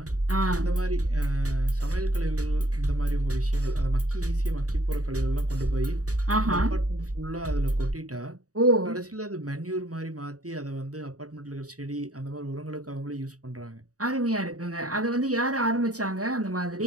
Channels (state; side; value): late; left; 0.66 ms